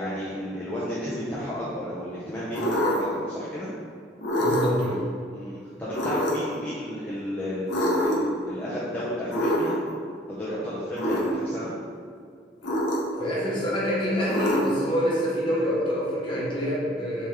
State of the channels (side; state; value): both; normal; correlation 0.52